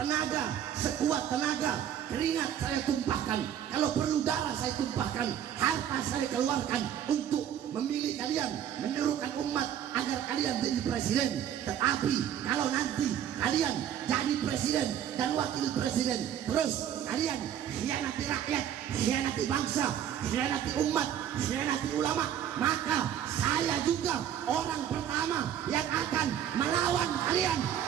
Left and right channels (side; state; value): left; quieter; 9.9 dB